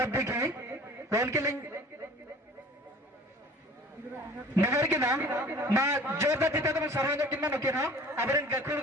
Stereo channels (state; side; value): normal; both; correlation 0.45